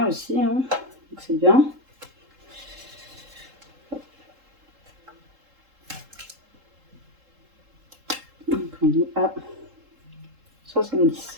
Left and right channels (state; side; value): late; left; 3.7 ms